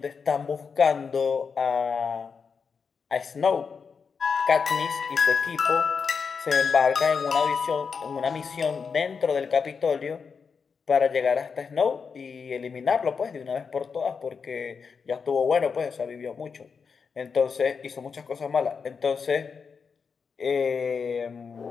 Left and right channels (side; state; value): right; quieter; 5.7 dB